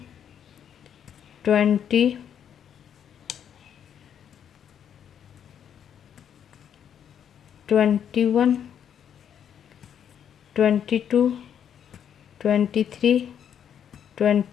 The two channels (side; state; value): right; quieter; 8.8 dB